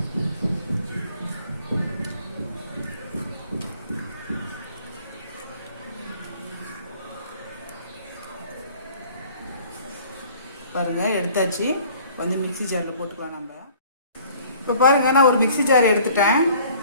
பாருங்கள், எடுத்தாச்சு. மிக்ஸி ஜாரில் போட்டுக்கலாம் நம்ம. இப்போ பாருங்கள், நான் ஒரு மிக்ஸி ஜார்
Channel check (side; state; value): both; inverted; correlation -0.53